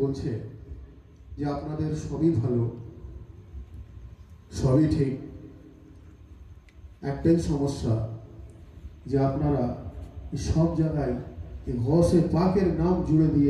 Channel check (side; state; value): both; identical; correlation 1.00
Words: বলছে যে আপনাদের সবই ভালো, সবই ঠিক, একটাই সমস্যা যে আপনারা সব জায়গায় গৌসে পাকের নাম জুড়ে দিয়ে